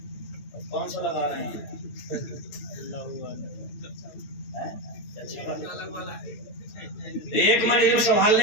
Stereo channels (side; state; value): right; late; 8.9 ms